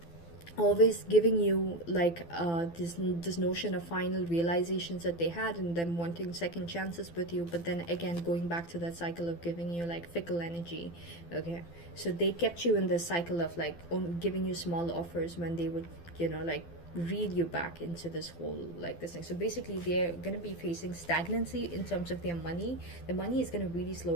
always giving you like this notion of final realizations that they had, and them wanting second chances with you, but then again going back to that cycle of giving you like fickle energy. Okay, so they kept you in this cycle of like giving you small offers when they would, you know, like reel you back into this whole like this thing. So basically they're going to be facing stagnancy in terms of their money. The money is going to really slow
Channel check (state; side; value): late; right; 12 ms